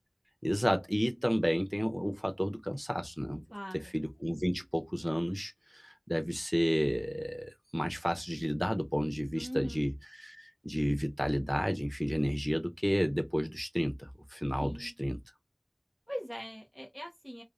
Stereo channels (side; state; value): both; identical; correlation 1.00